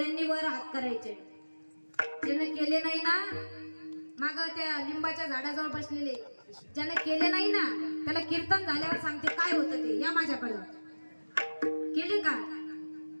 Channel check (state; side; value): inverted; both; correlation -1.00